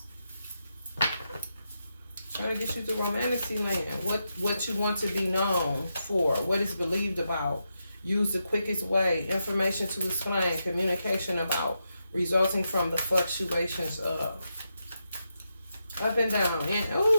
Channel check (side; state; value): both; inverted; correlation -0.86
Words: Trying to get you to romantic land. What you want to be known for. What is believed about. Use the quickest way. Information to explain. Communication about. Resulting from the fluctuations of up and down. And